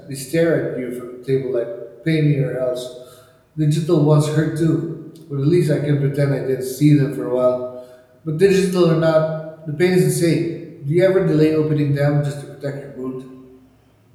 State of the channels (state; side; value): identical; both; correlation 1.00